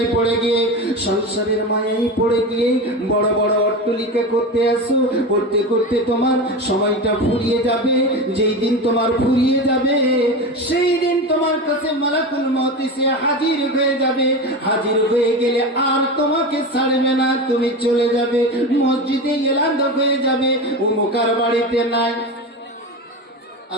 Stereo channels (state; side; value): normal; both; correlation 0.24